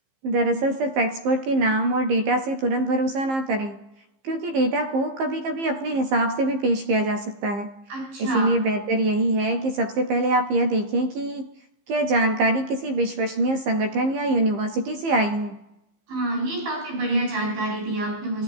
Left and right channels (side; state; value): left; late; 15 ms